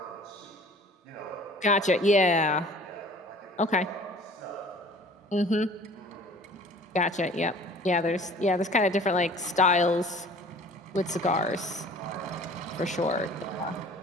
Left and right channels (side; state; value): both; normal; correlation 0.48